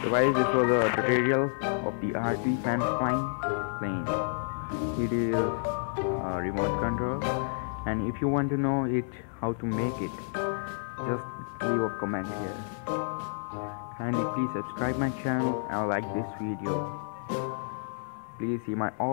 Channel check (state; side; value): silent; right; 58 dB below the other